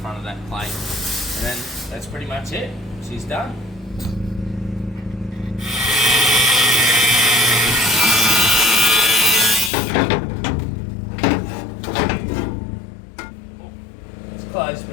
of that plate. And then that's pretty much it. She's done. It's close,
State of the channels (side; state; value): right; drops out; at 9.7 s